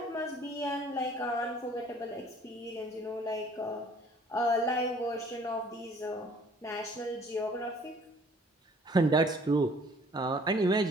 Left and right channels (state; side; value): normal; both; correlation 0.55